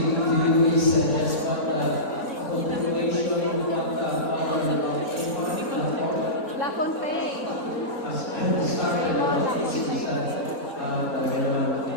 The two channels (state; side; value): normal; both; correlation -0.18